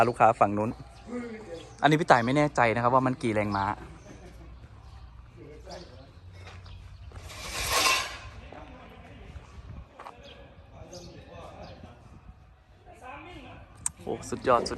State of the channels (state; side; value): identical; both; correlation 1.00